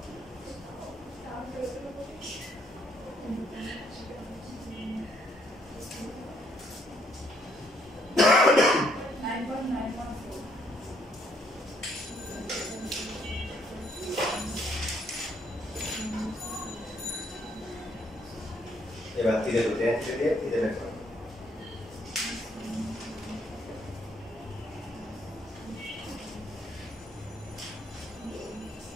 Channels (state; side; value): normal; both; correlation 0.69